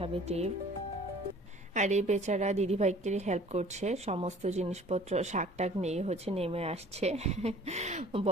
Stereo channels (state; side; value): normal; both; correlation 0.50